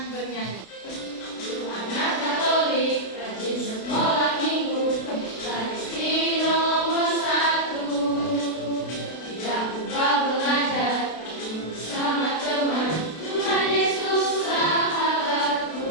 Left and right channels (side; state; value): right; late; 32 ms